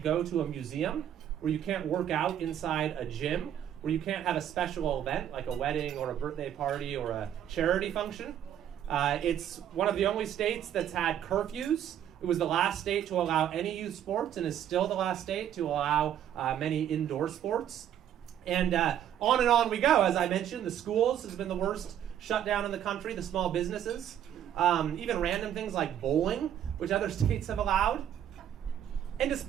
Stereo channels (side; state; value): left; quieter; 10.3 dB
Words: go to a museum, where you can't work out inside a gym, where you can't have a special event like a wedding or a birthday party or a charity function. It's one of the only states that's had curfews. It was the last state to allow any youth sports and is still the last state to allow many indoor sports. And on we go. As I mentioned, the schools has been the worst shutdown in the country, the small businesses, even random things like bowling, which other states have allowed. And